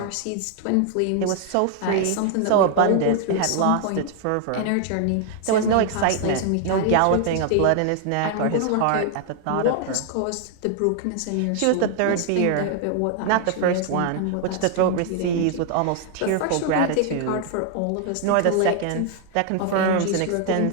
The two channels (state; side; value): different; both; correlation 0.00